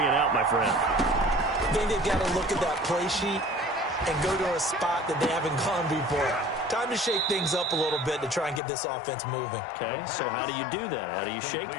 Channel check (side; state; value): right; drops out; at 8.6 s